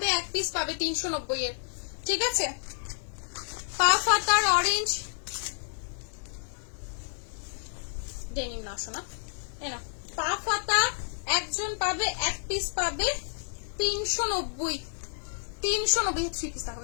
এক পিস পাবে 390 এর। ঠিক আছে, পা ফাতার অরেঞ্জ ডেনিম না শোনা, এরা পা ফাতা একজন পাবে, এক পিস পাবে 390। 390 3 পিস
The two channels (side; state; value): right; silent; digital silence